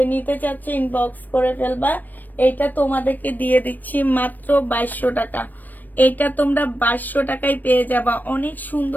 নিতে চাচ্ছে ইনবক্স করে ফেলবা। এটা তোমাদেরকে দিয়ে দিচ্ছি মাত্র 2200 টাকা। এটা তোমরা 2200 টাকায় পেয়ে যাবা। অনেক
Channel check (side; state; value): right; late; 0.088 ms